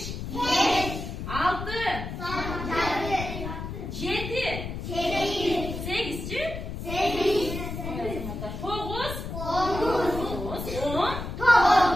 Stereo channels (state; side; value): noise; left; rumble, 7 dB below the sound